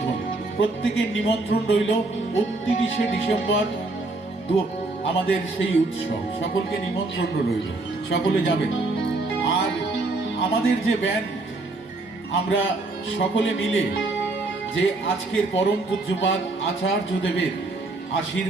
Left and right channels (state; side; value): quieter; left; 3.1 dB